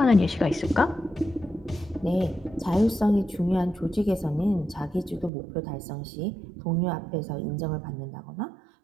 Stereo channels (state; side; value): drops out; left; at 5.3 s